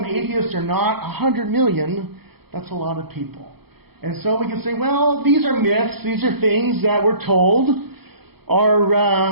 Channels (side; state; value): left; late; 0.96 ms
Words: atheists or not, 100 million, that's a lot of people. And so we can say, well, these are myths, these are things that we're told